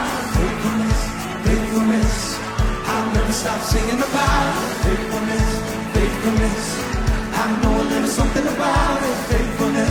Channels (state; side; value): identical; both; correlation 1.00